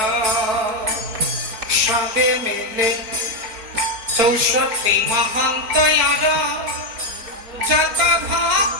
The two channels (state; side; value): late; left; 4.5 ms